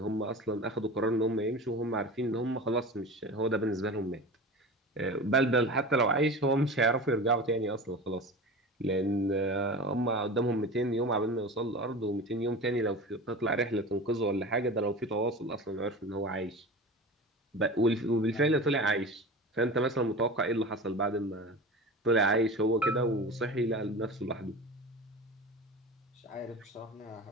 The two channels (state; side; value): normal; both; correlation 0.32